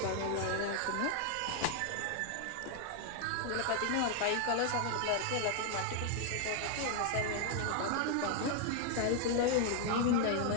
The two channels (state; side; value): different; both; correlation 0.00